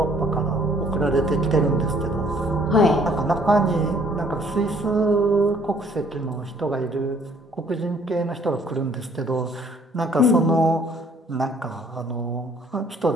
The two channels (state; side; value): normal; both; correlation 0.60